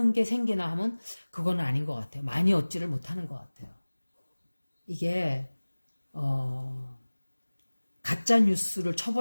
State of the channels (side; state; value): both; inverted; correlation -1.00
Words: 게 생기나 하면 그건 아닌 것 같아요. 많이 얻지를 못하는 것 같아요. 이게 가짜 뉴스를